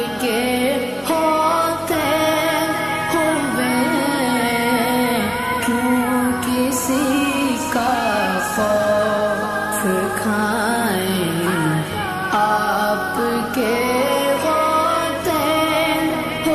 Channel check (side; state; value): both; identical; correlation 1.00